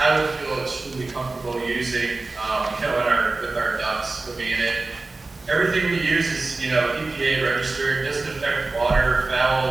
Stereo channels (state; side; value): quieter; left; 3.4 dB